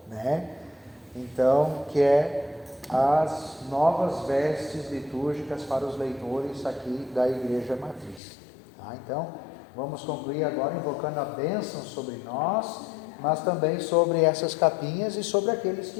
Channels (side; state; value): right; drops out; at 8.2 s